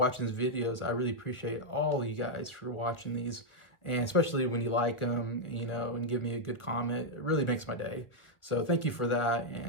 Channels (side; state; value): right; late; 1.1 ms